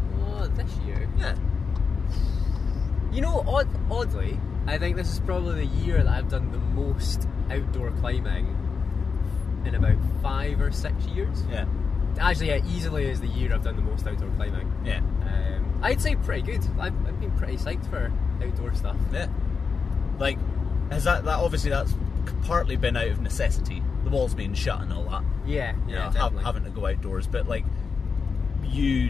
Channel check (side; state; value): right; quieter; 5.3 dB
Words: Oh, this year? Yeah. You know, oddly, I think this is probably the year that I've done the most outdoor climbing in about 5 or 6 years. Yeah. Actually, yeah, easily is the year I've done the most outdoor climbing. Yeah. I'd say pretty good. I've been pretty psyched for outdoor stuff. Yeah. Has that obviously that's partly been out of necessity. The walls being shut and all that. Yeah, definitely. Having to go outdoors, but you